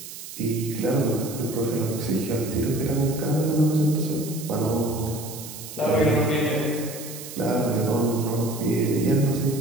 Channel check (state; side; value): noise; right; hiss, 12 dB below the sound